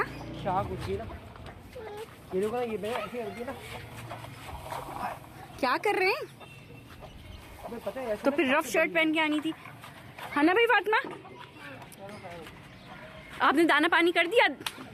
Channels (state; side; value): identical; both; correlation 1.00